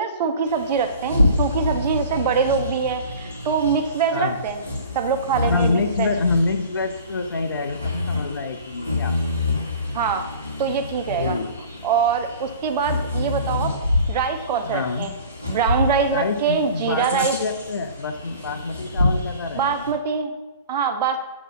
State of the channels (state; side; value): inverted; both; correlation -0.43